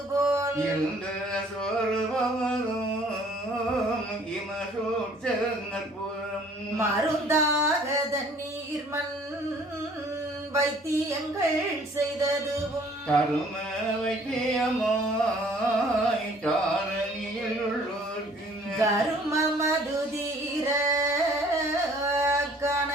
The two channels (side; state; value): both; normal; correlation 0.56